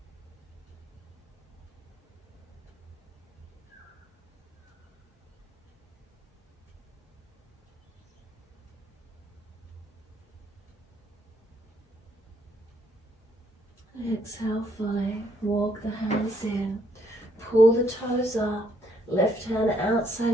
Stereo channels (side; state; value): both; normal; correlation 0.70